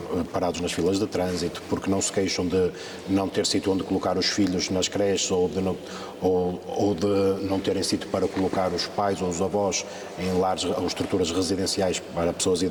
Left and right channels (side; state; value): both; identical; correlation 1.00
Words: parados nas filas de trânsito, porque não se queixam de não ter sítio onde colocar os filhos nas creches ou de não terem sítio para colocar os pais ou os avós em lares ou estruturas residenciais para pessoas